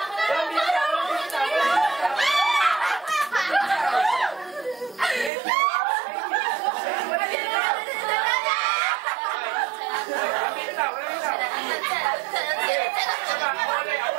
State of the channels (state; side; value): drops out; left; at 5.3 s